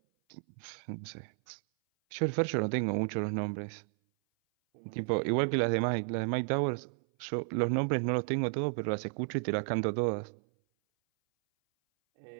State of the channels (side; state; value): left; silent; 56 dB below the other